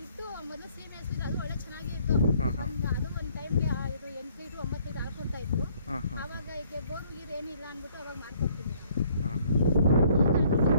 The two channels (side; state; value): both; inverted; correlation -0.62